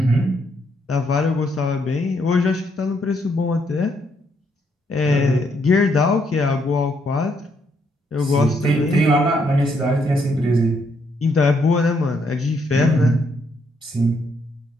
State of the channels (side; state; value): both; normal; correlation 0.74